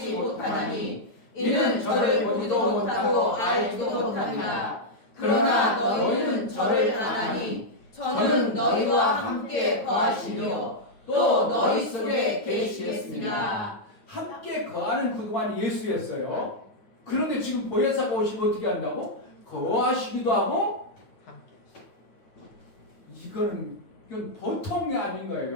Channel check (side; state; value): right; late; 9.3 ms